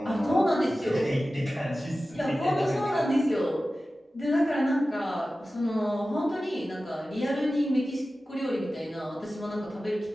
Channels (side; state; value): both; normal; correlation 0.95